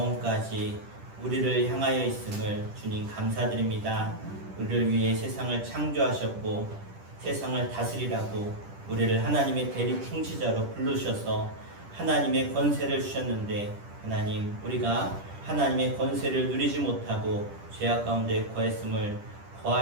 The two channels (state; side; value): late; left; 10 ms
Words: 우리를 향하여 있음을 주님 감사드립니다. 우리를 위해 세상을 창조하셨고 세상을 다스리라고 우리를 하나님의 대리 통치자로 부르셔서 하나님의 권세를 주셨는데, 하나님, 우리가 하나님의 권세를 누리지 못하고 죄악 가운데